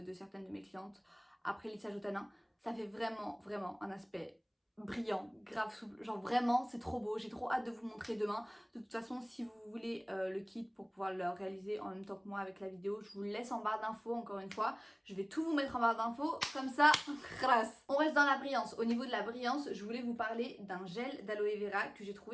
de certaines de mes clientes après le lissage au tanin. Ça fait vraiment un aspect brillant, grave souple, genre vraiment c'est trop beau, j'ai trop hâte de vous montrer demain. De toute façon si vous voulez le kit pour pouvoir le réaliser en même temps que moi avec la vidéo, je vous le laisse en barre d'infos encore une fois, je vais tout vous mettre en barre d'infos, comme ça, grâce. On reste dans la brillance. Au niveau de la brillance, je voulais vous parler d'un gel d'aloe vera que j'ai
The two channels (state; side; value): identical; both; correlation 1.00